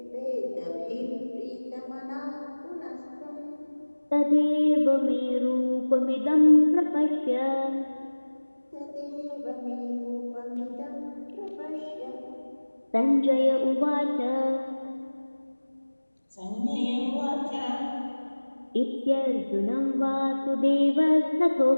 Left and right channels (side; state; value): both; inverted; correlation -1.00